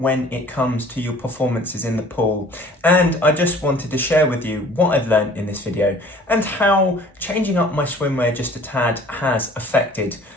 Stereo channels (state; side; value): normal; both; correlation 0.51